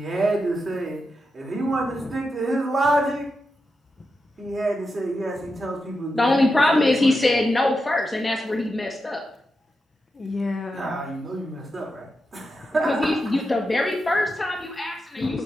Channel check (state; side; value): normal; both; correlation 0.88